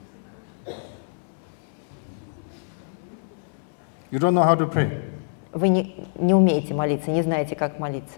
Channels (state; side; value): silent; right; digital silence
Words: You don't know how to pray. Вы не умеете молиться, не знаете, как